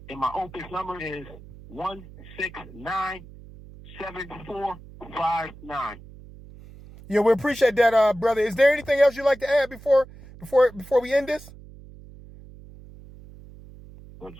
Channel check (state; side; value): noise; right; hum, 19 dB below the sound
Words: and my Opus number is 169-7459. Yeah, we appreciate that, brother. Is there anything else you'd like to add before we end this? Well,